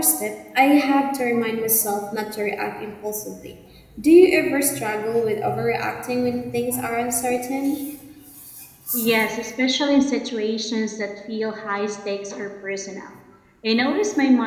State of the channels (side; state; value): both; identical; correlation 1.00